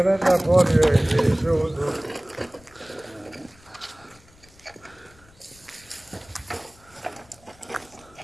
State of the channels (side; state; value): left; noise; rumble, 27 dB below the sound